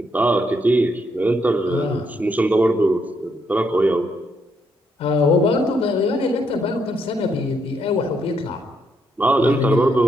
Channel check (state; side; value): normal; both; correlation 0.75